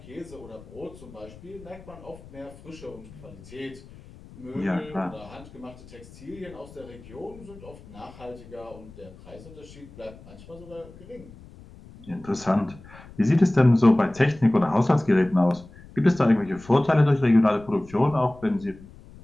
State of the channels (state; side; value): noise; left; rumble, 20 dB below the sound